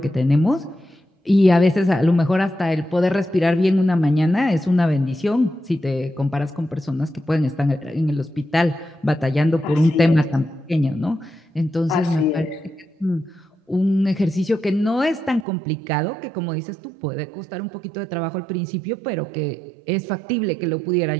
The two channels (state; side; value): drops out; left; at 15.5 s